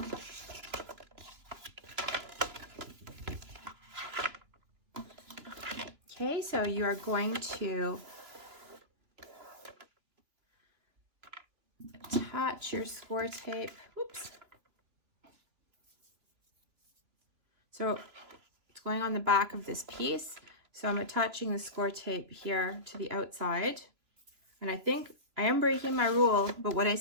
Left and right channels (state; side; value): late; left; 2.9 ms